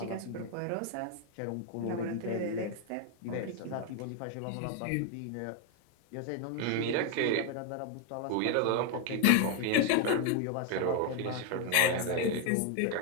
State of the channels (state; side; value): different; both; correlation 0.01